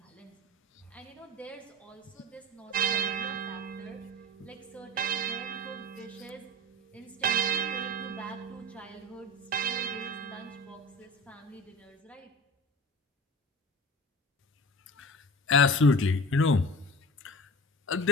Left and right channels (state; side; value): normal; both; correlation 0.36